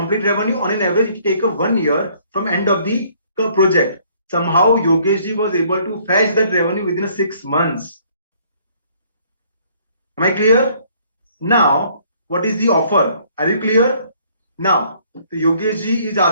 revenue, on an average, it take a 1 year from end of the project. Somehow Yogesh was able to fetch that revenue within 6 months. Am I clear? Now, what is the offer? Are you clear? Now, Yogesh is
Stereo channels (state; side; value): inverted; both; correlation -0.62